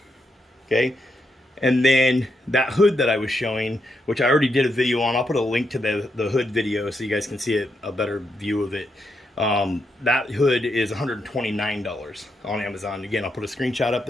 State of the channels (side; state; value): both; normal; correlation 0.81